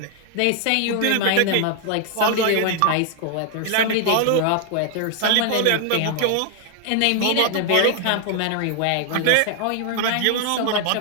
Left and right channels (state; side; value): different; both; correlation 0.00